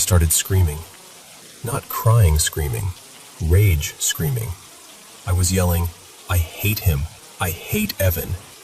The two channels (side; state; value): both; identical; correlation 1.00